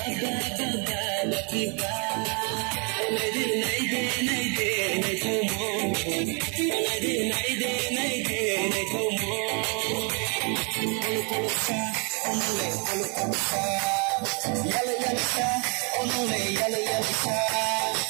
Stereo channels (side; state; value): left; quieter; 35.6 dB